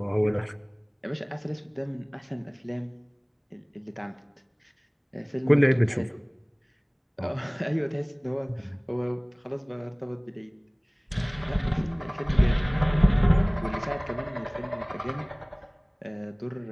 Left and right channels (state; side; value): identical; both; correlation 1.00